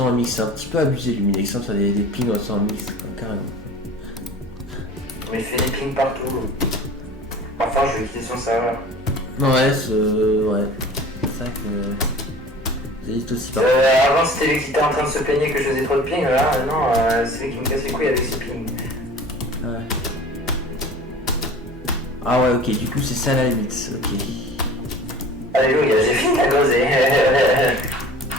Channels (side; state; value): both; normal; correlation 0.42